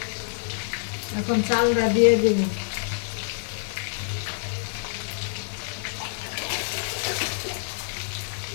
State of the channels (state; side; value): silent; right; digital silence